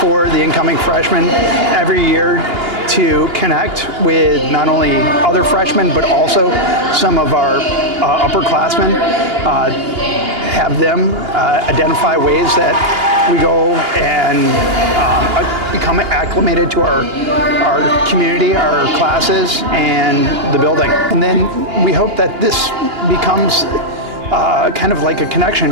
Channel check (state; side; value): late; left; 2.8 ms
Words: the incoming freshmen every year to connect with not only other freshmen but also some of our upperclassmen, have them identify ways that we go and become acclimated to our community, our classes, and the building. And then we hope that this becomes kind of like a connection,